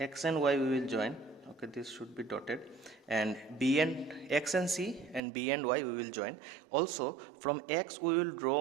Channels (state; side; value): drops out; left; at 5.2 s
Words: and Y, we will join. Okay, this should be dotted, and B and X and C and B and Y we will join. Also from X we will